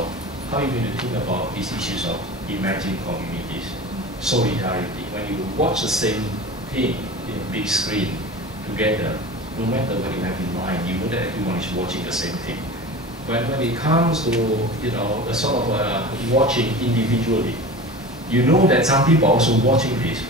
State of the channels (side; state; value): both; normal; correlation 0.34